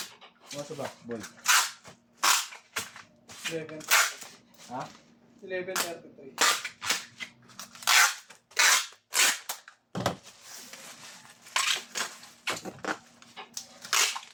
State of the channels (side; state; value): both; identical; correlation 1.00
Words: Ano ba, boy? 11. Ha? 11:33.